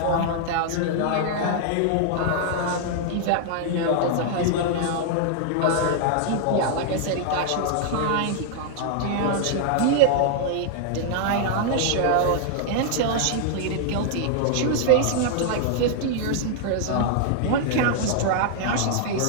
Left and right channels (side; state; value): both; different; correlation -0.01